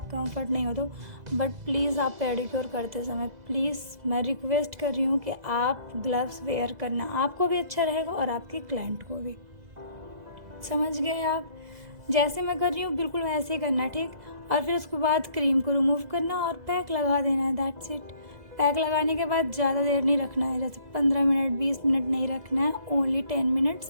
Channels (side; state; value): left; late; 2.0 ms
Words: कंफर्ट नहीं हो तो, बट प्लीज़ आप पेडिक्योर करते समय प्लीज़ मैं रिक्वेस्ट कर रही हूँ कि आप ग्लव्स वेयर करना, आपको भी अच्छा रहेगा और आपके क्लाइंट को भी। समझ गए आप? जैसे मैं कर रही हूँ बिल्कुल वैसे ही करना। ठीक, और फिर उसके बाद क्रीम को रिमूव करना और पैक लगा देना है, दैट्स इट। पैक लगाने के बाद ज़्यादा देर नहीं रखना है, जैसे 15 मिनट 20 मिनट नहीं रखना है, ओनली 10